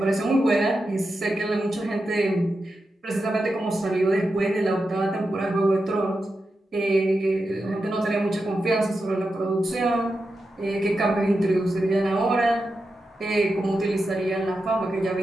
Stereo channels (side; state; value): both; normal; correlation 0.89